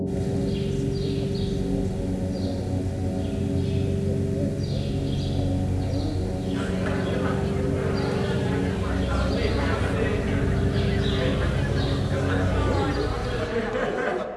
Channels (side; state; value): both; identical; correlation 1.00